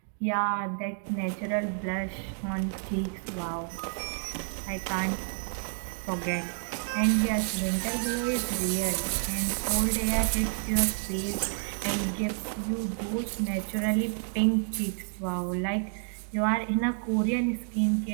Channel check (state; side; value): silent; left; 57 dB below the other